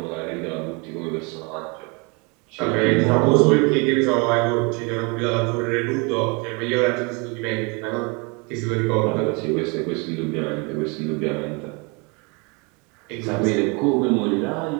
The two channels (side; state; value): left; quieter; 30.5 dB